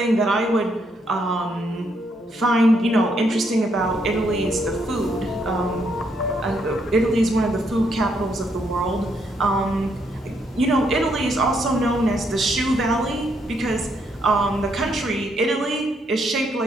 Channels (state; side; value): normal; both; correlation 0.75